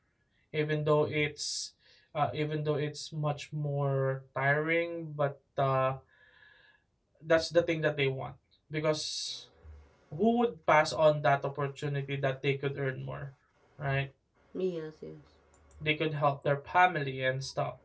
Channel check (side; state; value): both; identical; correlation 1.00